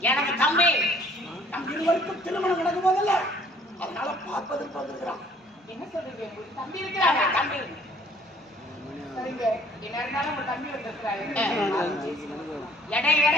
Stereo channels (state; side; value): normal; both; correlation 0.58